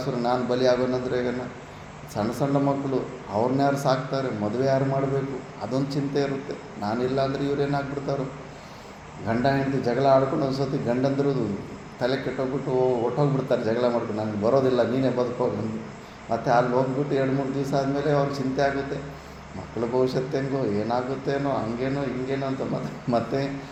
ನಾನು ಬಲಿ ಆಗೋನಂದ್ರೆ ಈಗನ ಸಣ್ಣ ಸಣ್ಣ ಮಕ್ಕಳು ಅವ್ರನ್ನ ಯಾರು ಸಾಕ್ತಾರೆ? ಮದುವೆ ಯಾರು ಮಾಡಬೇಕು? ಅದೊಂದು ಚಿಂತೆ ಇರುತ್ತೆ. ನಾನಿಲ್ಲ ಅಂದರೆ ಇವ್ರೇನಾಗ್ಬಿಡ್ತಾರೋ? ಗಂಡ ಹೆಂಡತಿ ಜಗಳ ಆಡ್ಕೊಂಡು ಒಂದು ಸತಿ ಗಂಡಂದ್ರದು ತಲೆ ಕೆಟ್ಟೋಗ್ಬಿಟ್ಟು ಹೊಟ್ಟೋಗ್ಬಿಡ್ತಾರೆ ಜಗಳ ಮಾಡ್ಕೊಂಡು. ನನಗೆ ಬರೋದಿಲ್ಲ, ನೀನೇ ಬದುಕೋಗಂದು. ಮತ್ತು ಅಲ್ಲಿ ಹೋಗ್ಬಿಟ್ಟು 2-3 ದಿವಸ ಆದಮೇಲೆ ಅವ್ರಿಗೆ ಚಿಂತೆ ಆಗುತ್ತೆ. ಮಕ್ಕಳ ಭವಿಷ್ಯತ್ತು ಹೆಂಗೋ ಏನಾಗುತ್ತೇನೋ, ಹಂಗೇನೋ ಹಿಂಗೇನೋ ಅಂತ ಮತ್ತೆ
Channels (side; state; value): both; identical; correlation 1.00